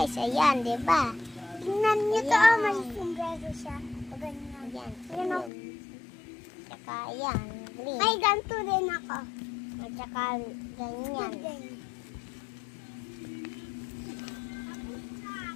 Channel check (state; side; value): drops out; right; at 5.5 s